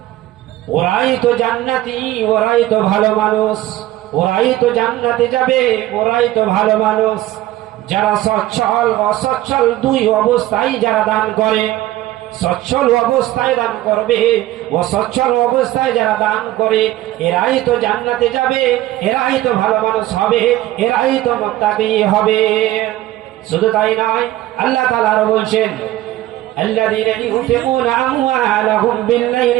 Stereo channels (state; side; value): quieter; left; 15.5 dB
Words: ওরাই তো জান্নাতি, ওরাই তো ভালো মানুষ, ওরাই তো জান্নাতে যাবে, ওরাই তো ভালো মানুষ যারা সচ্ছল অসচ্ছল দুই অবস্থায় যারা দান করে। সচ্ছল অবস্থায় দান করবে, ও সচ্ছল অবস্থায় যারা দান করে এরাই তো জান্নাতে যাবে, এরাই তো ভালো মানুষ হবে, এরাই তো মুত্তাকি হবে। শুধু তাই নয়, আল্লাহ তাআলা আরো বলছেন الذين ينفقون أموالهم